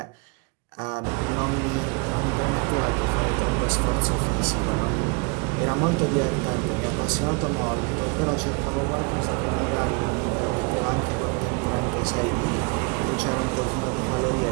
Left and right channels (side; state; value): left; quieter; 31.9 dB